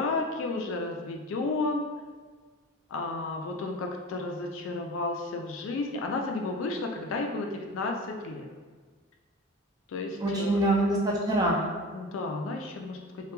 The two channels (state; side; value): normal; both; correlation 0.33